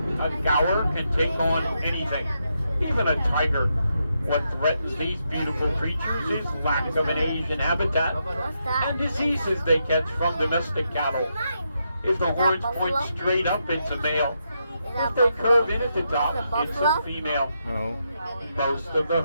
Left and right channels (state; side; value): inverted; both; correlation -0.82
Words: a gaur can take on anything, even a tiger. What threatens these beautiful creatures is lack of an Asian habitat and diseases they catch from domestic cattle. If the horns point straight up, it's a male. If they curve in at the top, it's a female. No. Most of the